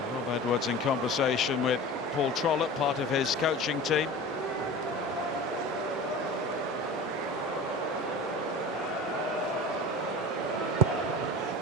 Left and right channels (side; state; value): both; normal; correlation 0.35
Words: Rob Edwards in conversation with Paul Trollope, part of his coaching team.